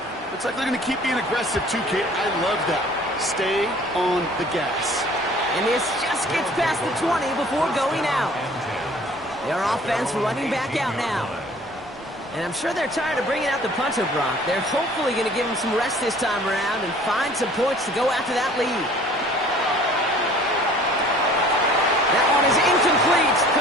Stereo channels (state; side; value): normal; both; correlation 0.51